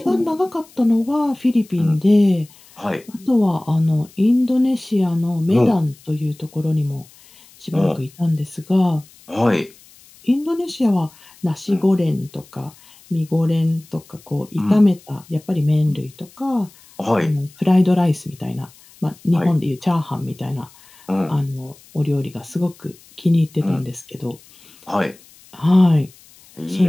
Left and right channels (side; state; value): left; noise; hiss, 26 dB below the sound